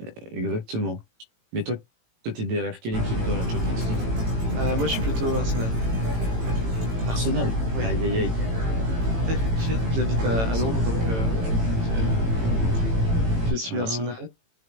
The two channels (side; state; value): left; late; 18 ms